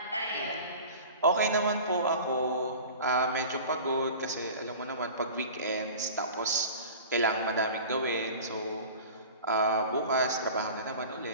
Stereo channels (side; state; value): both; inverted; correlation -0.38